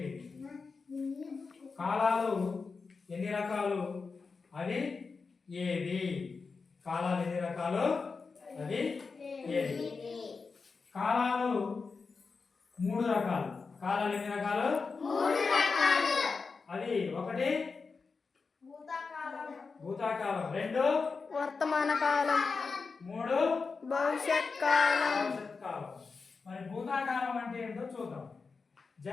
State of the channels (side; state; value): right; quieter; 4.7 dB